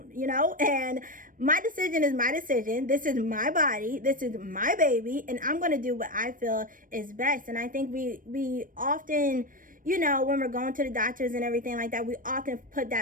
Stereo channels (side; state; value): left; late; 0.40 ms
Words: you know, and my decision is my decision. This is my body. This is my baby, and I'm going to do what I feel is best. And I think we often, you know, when we're going to the doctors and everything like that, we often put